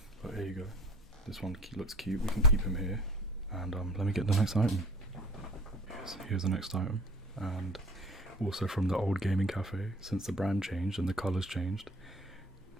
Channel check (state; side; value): normal; both; correlation 0.47